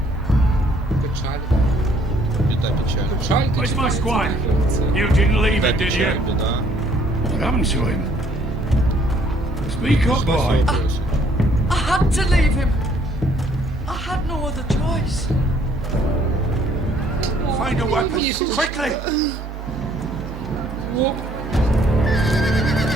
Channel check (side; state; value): both; normal; correlation 0.63